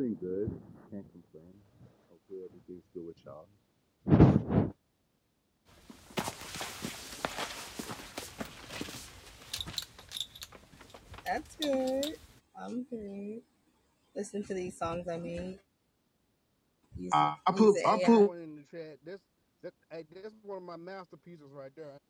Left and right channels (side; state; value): both; identical; correlation 1.00